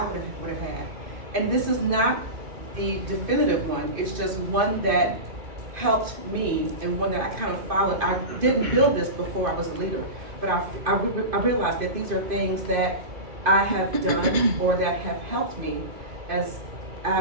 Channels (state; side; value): late; left; 2.5 ms